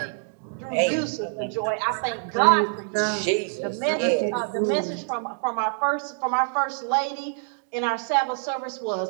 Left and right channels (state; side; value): silent; left; 61 dB below the other